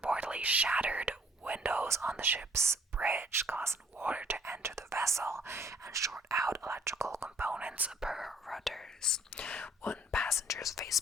shattered windows on the ship's bridge, causing water to enter the vessel and short out electrical components per Reuters. One passenger's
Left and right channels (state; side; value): normal; both; correlation 0.60